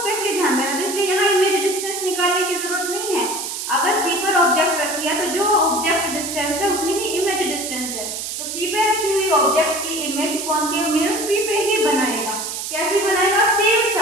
स्पेशली ध्यान देना, तो इसलिए यहाँ इमेज डिस्टेंस निकालने की जरूरत नहीं है। अगर सी पर ऑब्जेक्ट रखी है तो जो ऑब्जेक्ट डिस्टेंस है उतनी ही इमेज डिस्टेंस है। तो सी पे रखी हुई ऑब्जेक्ट की इमेज कॉनकेव मिरर सी पे ही बनाएगा। कैसे बनाएगा, सेम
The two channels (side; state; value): right; noise; hiss, 5 dB below the sound